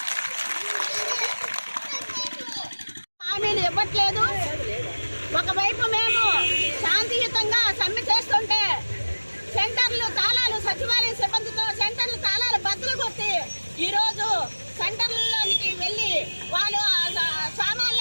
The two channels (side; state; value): both; inverted; correlation -1.00